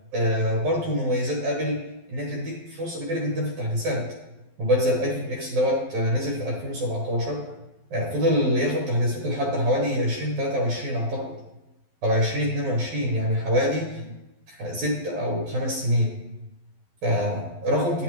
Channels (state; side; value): late; left; 12 ms